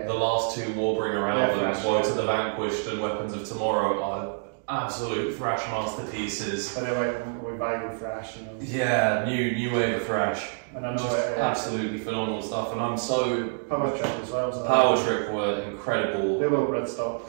The last 2 Warbringer albums, Woe to the Vanquished and Weapons of Tomorrow, are absolute thrash masterpieces. But they're like revival thrash, you know. Yeah, new wave of thrash. And I know absolutely phenomenal stuff, and I'm so... Power Trip as well. Power Trip were incredible. They were Bloodstock.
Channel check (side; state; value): left; silent; digital silence